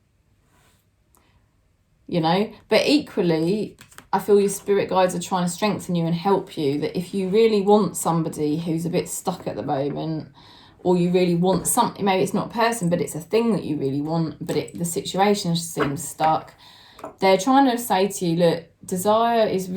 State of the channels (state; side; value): identical; both; correlation 1.00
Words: You know, but equally, I feel your spirit guides are trying to strengthen you and help you, that if you really want somebody who's a bit stuck at the moment, or you really want something, maybe it's not a person, but it's a thing that you really want, but the situation seems stuck, they're trying to say to you, look, desire is